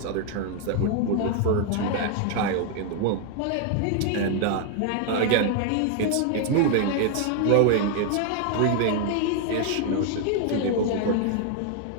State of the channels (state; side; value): different; both; correlation 0.00